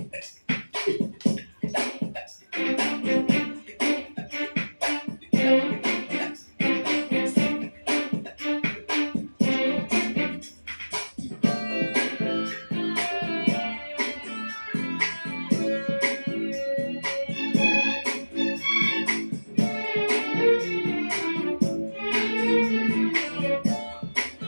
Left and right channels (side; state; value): both; inverted; correlation -1.00